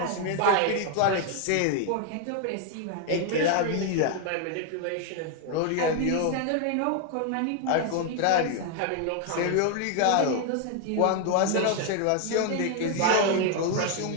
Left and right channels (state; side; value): different; both; correlation 0.01